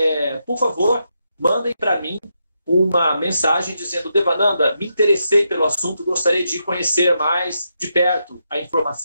por favor, mandem para mim uma mensagem dizendo: Devananda, me interessei pelo assunto, gostaria de conhecer mais de perto a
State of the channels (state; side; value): inverted; both; correlation -0.83